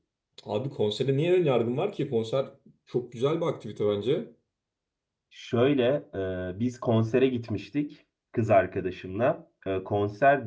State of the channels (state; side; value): identical; both; correlation 1.00